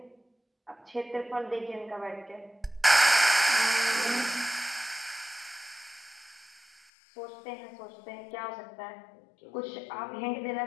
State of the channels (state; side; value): drops out; right; at 6.9 s